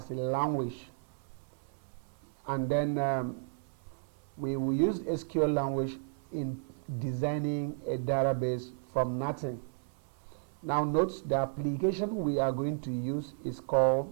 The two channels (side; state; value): left; silent; 56 dB below the other